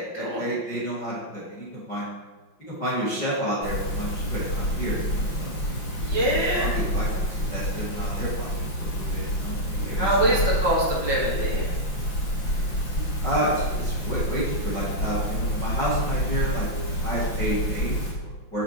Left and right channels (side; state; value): right; late; 5.6 ms